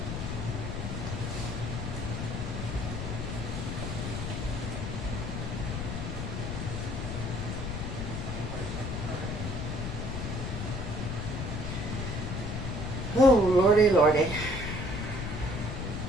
Oh, lordy, lordy.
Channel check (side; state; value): left; noise; rumble, 3 dB below the sound